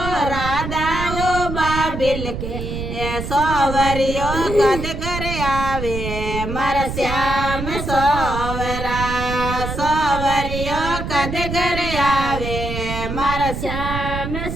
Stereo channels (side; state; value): right; noise; rumble, 5 dB below the sound